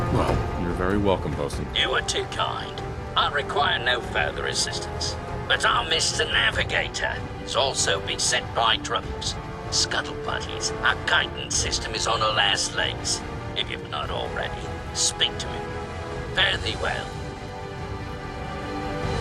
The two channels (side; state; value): both; identical; correlation 1.00